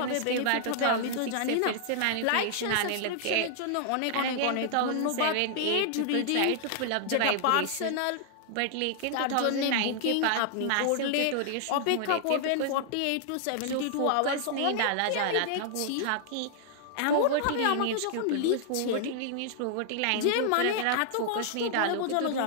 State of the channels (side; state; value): both; different; correlation -0.01